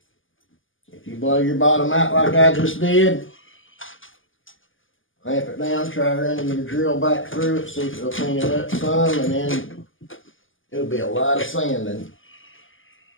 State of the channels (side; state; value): right; late; 0.58 ms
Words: If you blow your bottom out like I just did, clamp it down, try running your drill back through it, see if it'll clean it up some, and then it'll be a lot of sanding.